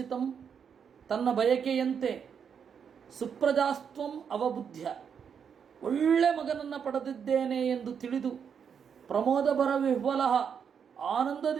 ತನ್ನ ಬಯಕೆಯಂತೆ ಸುಪ್ರಜಾಸ್ತ್ವಂ ಅವಬುದ್ಧ್ಯ ಒಳ್ಳೆ ಮಗನನ್ನು ಪಡೆದಿದ್ದೇನೆ ಎಂದು ತಿಳಿದು ಪ್ರಮೋದಭರ ವಿಹ್ವಲ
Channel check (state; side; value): quieter; left; 7.2 dB